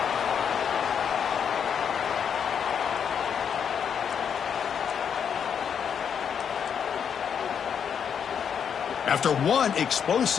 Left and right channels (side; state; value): right; quieter; 7.6 dB